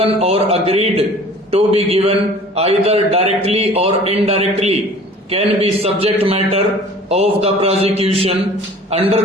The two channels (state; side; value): normal; both; correlation 0.47